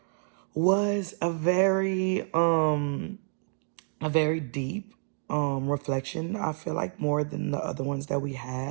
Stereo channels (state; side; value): silent; left; 59 dB below the other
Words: was a very deep reflection. I feel like more than the other ones that we